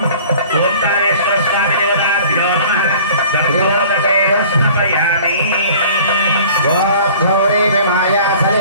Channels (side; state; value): both; inverted; correlation -0.48